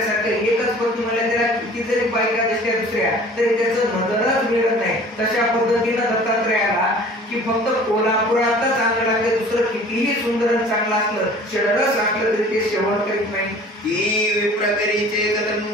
एकच पत्नी म्हणल्या त्याला किती जरी बायका दिसल्या दुसऱ्या तरी त्याचं नजरच मिळत नाही. तशा पद्धतीनं दत्तात्रयाला की फक्त कोल्हापुरातच चांगलं लागतं, दुसरं कितीही सुंदर चांगलं असलं षडरस असलं तरी ते सेवन करीत नाही. की विप्रकरीचे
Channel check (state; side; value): normal; both; correlation 0.47